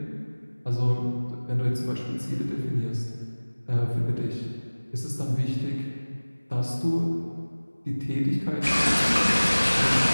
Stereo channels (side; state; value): both; inverted; correlation -1.00